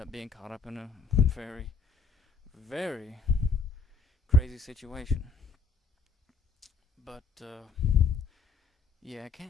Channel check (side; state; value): right; quieter; 4.4 dB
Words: being caught up in a very, very crazy situation. But, yeah, I